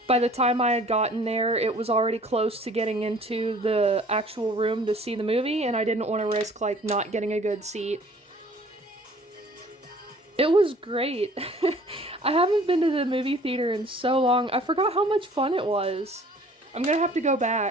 By the time I had gotten there, it was already close to getting into the actual room to see the movie, and I didn't want to risk, like, not getting a good seat. It was great. I haven't been to the movie theater in so long. I forgot how much fun it was. I'm gonna have to go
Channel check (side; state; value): both; normal; correlation 0.52